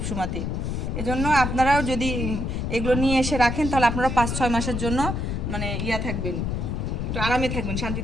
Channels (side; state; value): left; noise; rumble, 2 dB below the sound